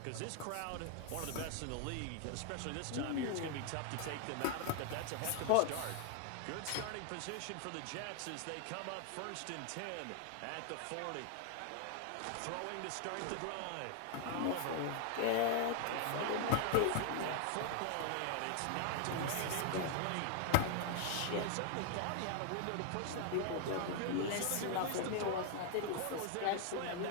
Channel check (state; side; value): different; both; correlation 0.00